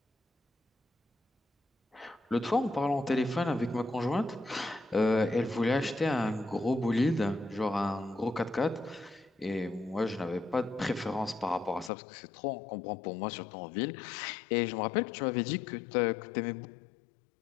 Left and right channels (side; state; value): right; drops out; at 11.9 s